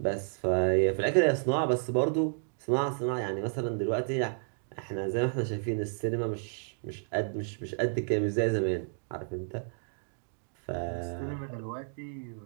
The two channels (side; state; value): left; silent; digital silence